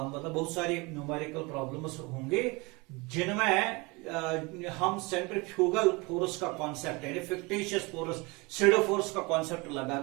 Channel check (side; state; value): left; quieter; 26.1 dB